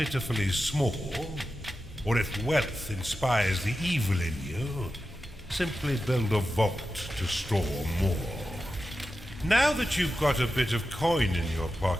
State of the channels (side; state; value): both; normal; correlation 0.91